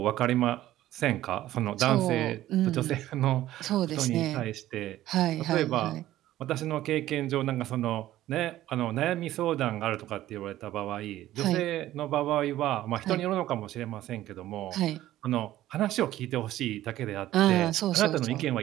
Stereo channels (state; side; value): quieter; left; 14.3 dB